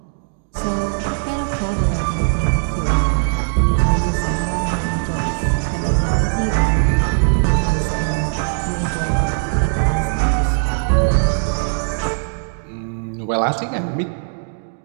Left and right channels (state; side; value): silent; left; digital silence